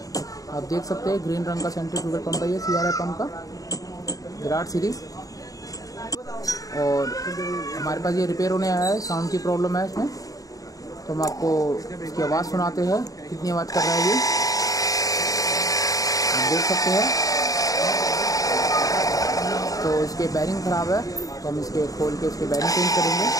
आप देख सकते हैं ग्रीन रंग का सेंट्रीफ्यूगल पंप है ये सीआरआई पंप का, विराट सीरीज। और हमारे पास ये रिपेयर होने आया है, साउंड की प्रॉब्लम है इसमें, तो हम आपको इसकी आवाज़ सुनाते हैं कितनी आवाज़ कर रहा है ये, आप देख सकते हैं। तो इसके बैरिंग ख़राब है, तो हम इसके खोल के इसके बैरिंग चेंज करेंगे।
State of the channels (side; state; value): right; late; 0.17 ms